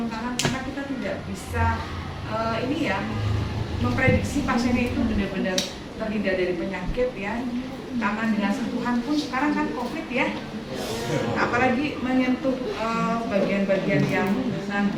tangan karena kita tidak bisa ini ya memprediksi pasiennya itu benar-benar terhindar dari penyakit ya. Tangan dengan sentuhan pun sekarang kan COVID ya. Apalagi menyentuh bagian-bagian yang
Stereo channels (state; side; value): identical; both; correlation 1.00